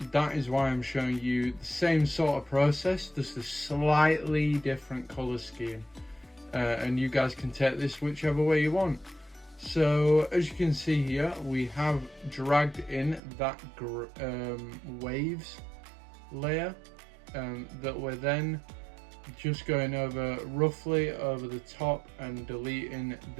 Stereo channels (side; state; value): left; drops out; at 13.2 s